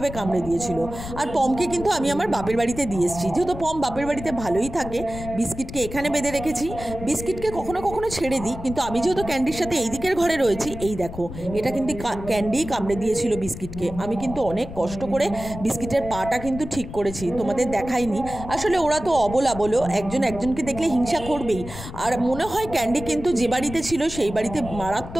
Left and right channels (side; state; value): left; noise; rumble, 11 dB below the sound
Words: কামড়ে দিয়েছিল। আর পমকে কিন্তু আমি আমার বাপের বাড়িতে দিয়ে এসেছি, যেহেতু পম বাপের বাড়িতে ভালোই থাকে। বিস্কিটকে এখানে বেঁধে রেখেছি, বিস্কিটকে কখনো কখনো ছেড়ে দিই, কিন্তু আমি যেহেতু ক্যান্ডির সাথে এই দিকের ঘরে রয়েছি, এই দেখো, এটা কিন্তু ক্যান্ডিই কামড়ে দিয়েছিল বিস্কিটকে। আমি কিন্তু অনেক কষ্ট করে বিস্কিটের পাটা কিন্তু ঠিক করেছি, তোমাদের দেখাইনি। আসলে ওরা তো অবলা, বলো, একজনকে দেখলে হিংসা করবেই। আর মনে হয় ক্যান্ডি কিন্তু যে বাড়িতে ছিল সেই বাড়িতে